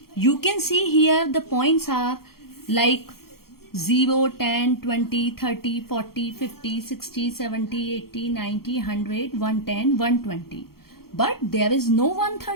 You can see here the points are like 0, 10, 20, 30, 40, 50, 60, 70, 80, 90, 100, 110, 120. But there is no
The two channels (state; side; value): late; right; 0.94 ms